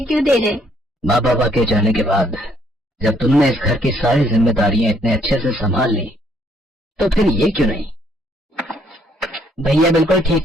क्यों दे रहे? माँ बाबा के जाने के बाद जब तुमने इस घर की सारी जिम्मेदारियां इतने अच्छे से संभाल ली, तो फिर ये क्यों नहीं? भैया बिल्कुल ठीक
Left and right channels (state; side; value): normal; both; correlation 0.67